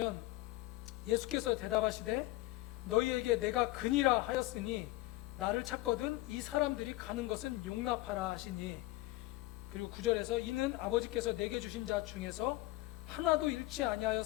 예수께서 대답하시되 너희에게 내가 그니라 하였으니 나를 찾거든 이 사람들이 가는 것은 용납하라 하시니, 그리고 9절에서 이는 아버지께서 내게 주신 자 중에서 하나도 잃지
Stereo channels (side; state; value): right; quieter; 18.8 dB